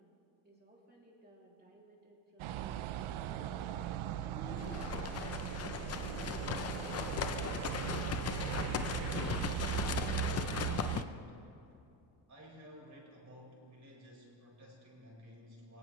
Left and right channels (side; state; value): both; normal; correlation 0.15